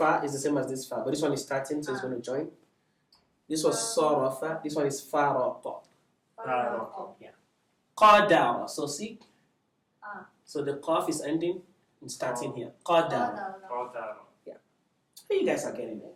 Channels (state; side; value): identical; both; correlation 1.00